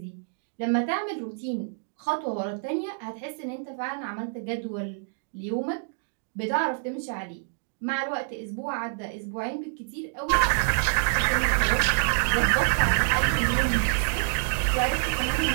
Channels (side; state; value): left; silent; digital silence